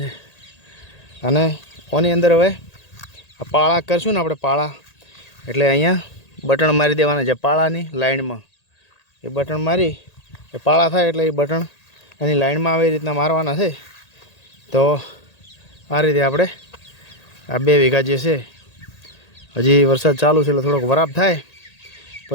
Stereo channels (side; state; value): right; late; 1.8 ms